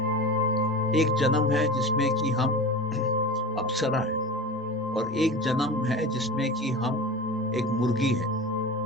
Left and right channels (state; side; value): normal; both; correlation 0.30